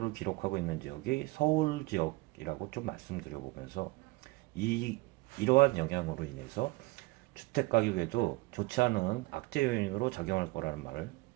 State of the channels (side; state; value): left; quieter; 22.0 dB